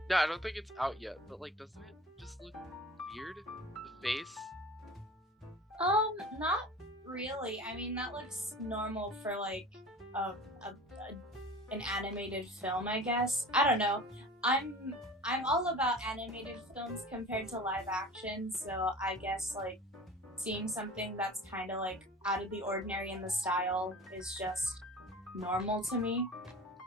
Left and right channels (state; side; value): normal; both; correlation 0.39